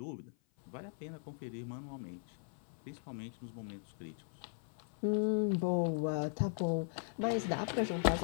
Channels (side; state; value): right; silent; 52 dB below the other